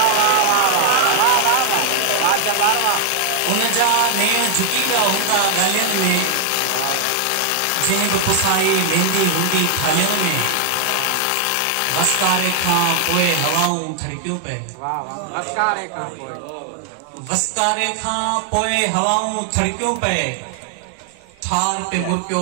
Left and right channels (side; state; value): both; different; correlation 0.00